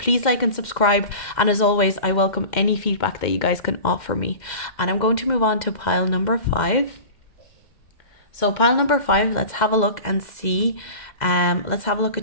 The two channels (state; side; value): late; right; 2.1 ms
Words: like and subscribe. And as always, I welcome any feedback that you guys can offer me. And I'm going to move on to pile number 5. So pile number 5, let's have a look and see. Let's have a look